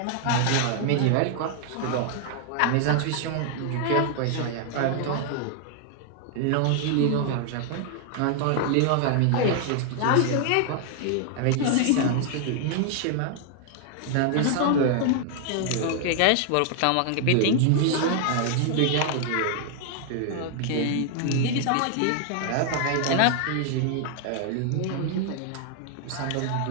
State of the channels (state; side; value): different; both; correlation 0.00